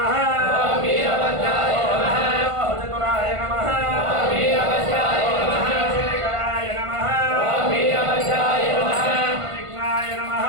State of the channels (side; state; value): left; late; 1.5 ms